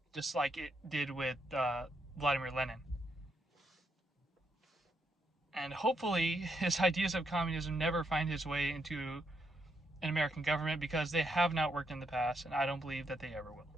just like it did with Vladimir Lenin. And hopefully his ideas of communism never find his way into an American government because they have not worked in the past, and I don't believe that they ever will.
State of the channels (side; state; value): both; normal; correlation 0.79